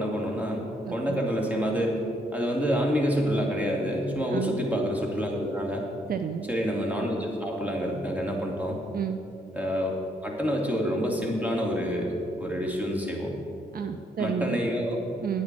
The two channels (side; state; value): both; normal; correlation 0.72